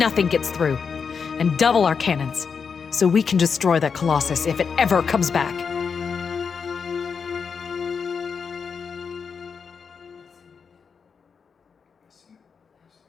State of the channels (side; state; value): right; quieter; 6.0 dB